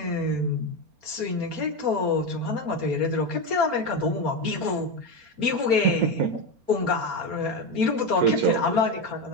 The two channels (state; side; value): late; left; 4.3 ms